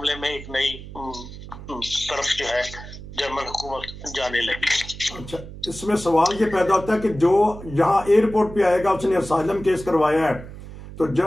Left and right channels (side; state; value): right; noise; hum, 14 dB below the sound